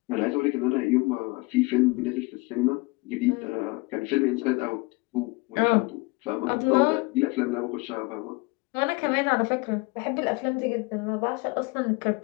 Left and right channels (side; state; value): right; quieter; 25.7 dB